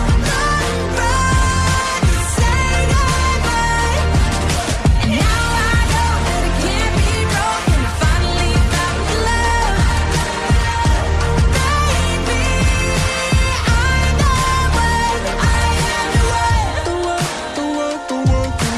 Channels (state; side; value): identical; both; correlation 1.00